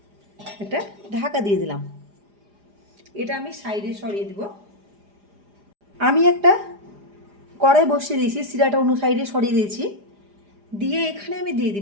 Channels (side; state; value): left; late; 4.9 ms